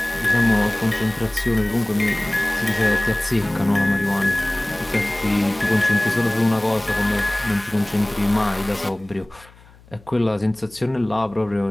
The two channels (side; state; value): left; noise; hum, 25 dB below the sound